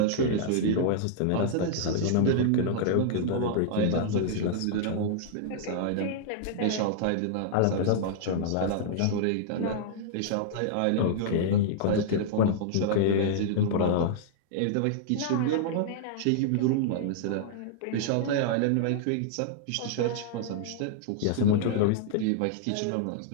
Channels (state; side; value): different; both; correlation -0.01